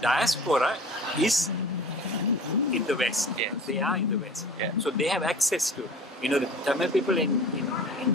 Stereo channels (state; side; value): normal; both; correlation 0.41